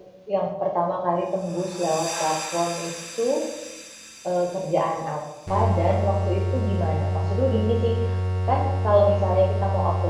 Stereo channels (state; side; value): identical; both; correlation 1.00